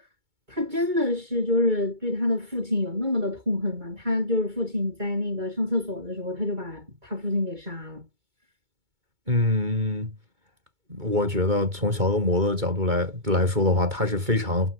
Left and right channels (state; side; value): late; left; 2.2 ms